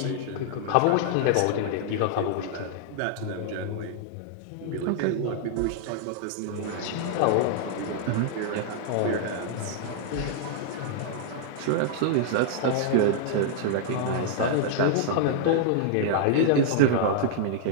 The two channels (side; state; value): both; different; correlation -0.01